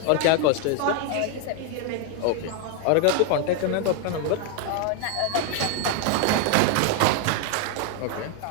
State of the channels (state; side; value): different; both; correlation 0.01